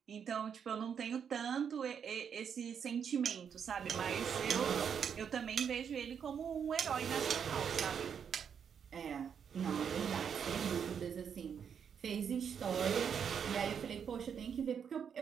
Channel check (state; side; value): quieter; left; 7.5 dB